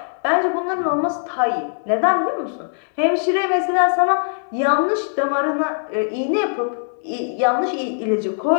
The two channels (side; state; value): right; silent; digital silence